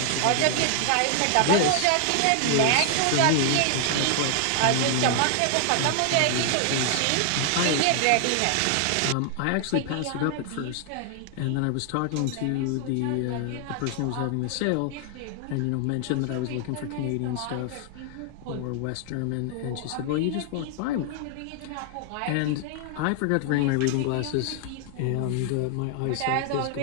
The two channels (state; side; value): different; both; correlation 0.00